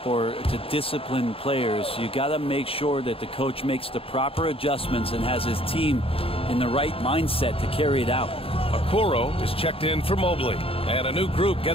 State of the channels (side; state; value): right; late; 0.27 ms